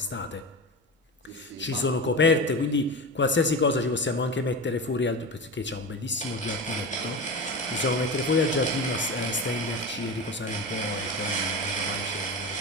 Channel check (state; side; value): normal; both; correlation 0.25